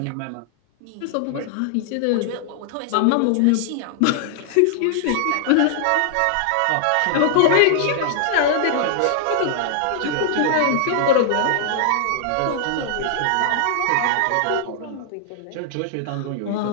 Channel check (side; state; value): both; different; correlation -0.01